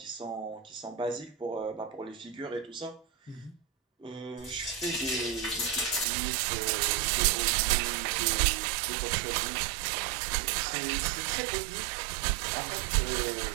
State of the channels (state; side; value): drops out; left; at 6.1 s